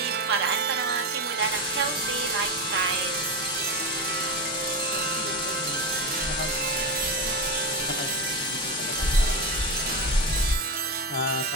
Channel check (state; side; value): normal; both; correlation 0.16